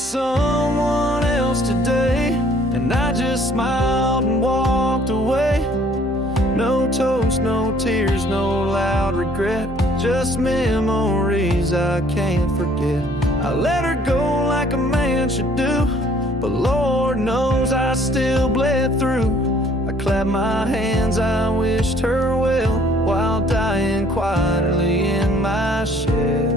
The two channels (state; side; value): normal; both; correlation 0.59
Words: else today, and I just smiled and walked away. No toast, no tears, no loud regret, just memories I can't forget. I let her go like a man should do, but Lord knows I still bled through. I clapped my hands, I wished her well, while dying quietly in my